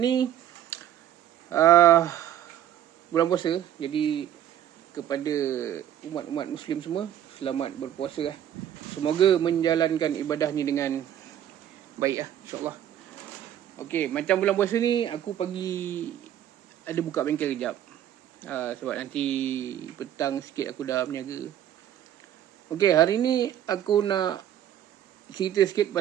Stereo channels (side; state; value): left; quieter; 10.9 dB